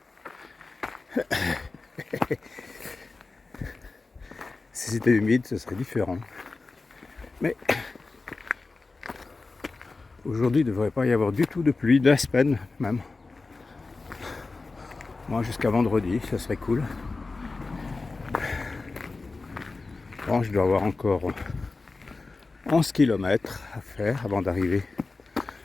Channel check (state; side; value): quieter; right; 3.7 dB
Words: Si c'était humide, ce serait différent. Mais aujourd'hui, il ne devrait pas y avoir du tout de pluie, de la semaine même. Moi, jusqu'à vendredi, ça serait cool. Bon, je dois avoir encore 11 km à faire avant d'arriver